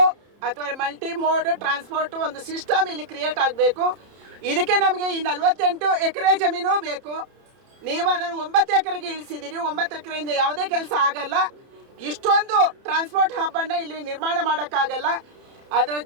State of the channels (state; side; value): late; left; 30 ms